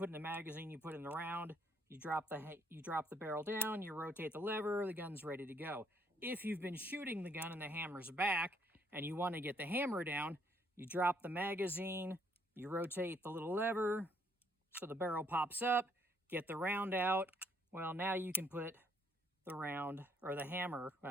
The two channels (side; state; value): both; normal; correlation 0.69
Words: in the magazine, you put in the round, you drop the barrel down, you rotate the lever, the gun's ready to go. If you've been shooting the gun and the hammer's back, and you want to get the hammer down, you drop the magazine, you rotate the little lever, so the barrel pops up, get the round out. Well, now you can put the round, or the hammer,